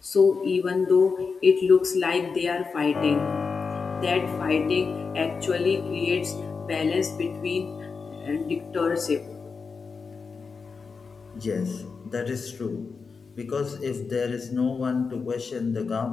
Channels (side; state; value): right; quieter; 5.0 dB